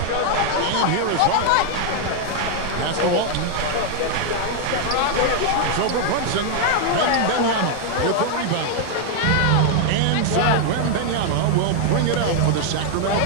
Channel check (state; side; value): different; both; correlation 0.00